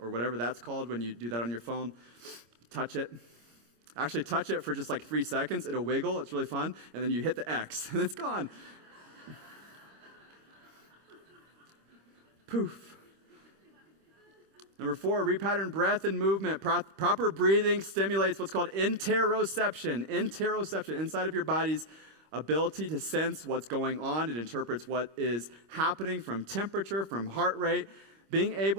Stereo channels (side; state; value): left; late; 25 ms